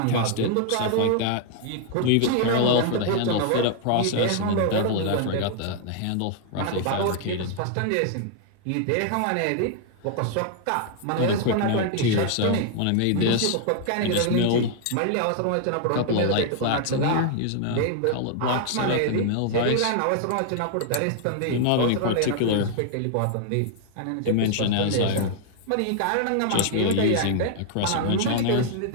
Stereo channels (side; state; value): both; different; correlation 0.00